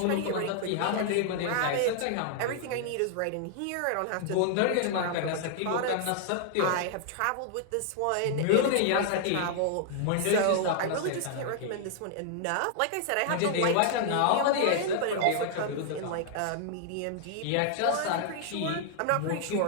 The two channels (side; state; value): both; different; correlation -0.01